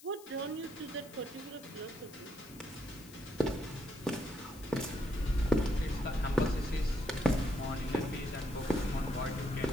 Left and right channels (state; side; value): noise; left; hiss, 20 dB below the sound